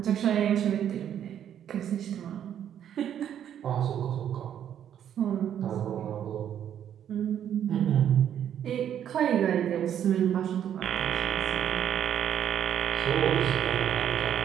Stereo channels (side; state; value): left; quieter; 9.8 dB